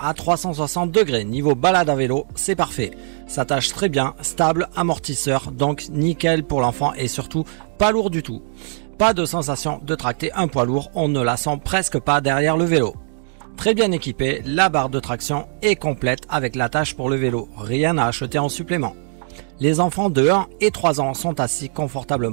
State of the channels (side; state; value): left; silent; digital silence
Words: 360 degrés. Niveau balade à vélo, c'est parfait. S'attache très bien, stable, amortisseur, donc nickel pour l'enfant et surtout pas lourd du tout. Pas de sensation de tracter un poids lourd, on ne la sent presque pas derrière le vélo. Très bien équipée, la barre de traction est complète avec l'attache pour le vélo. Rien à acheter en supplément. Les enfants de 1 et 3 ans sont assis